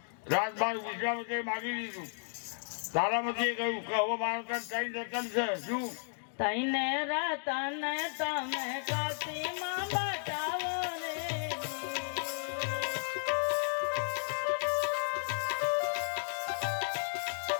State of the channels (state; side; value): silent; right; digital silence